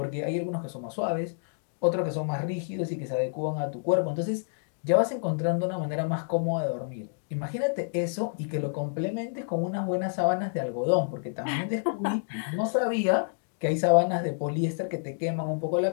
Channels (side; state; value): right; silent; digital silence